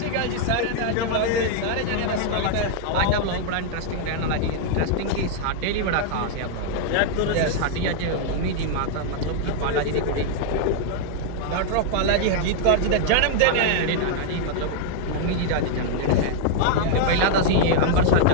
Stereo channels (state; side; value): different; both; correlation -0.01